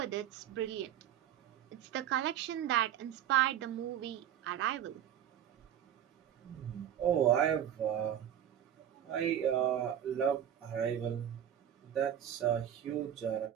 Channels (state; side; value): quieter; left; 10.2 dB